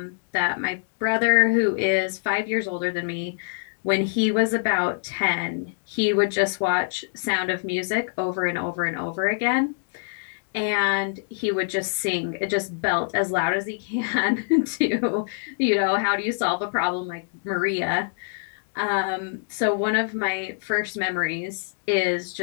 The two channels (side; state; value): right; silent; digital silence